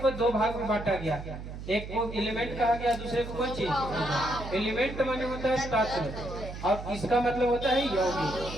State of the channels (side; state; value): right; noise; hum, 10 dB below the sound